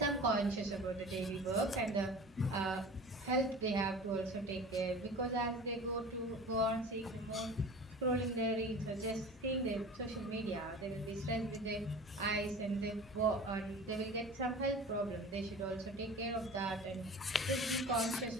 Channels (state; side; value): normal; both; correlation 0.38